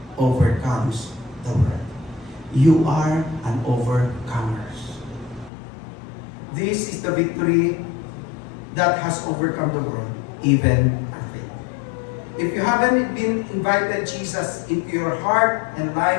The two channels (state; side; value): drops out; right; at 5.5 s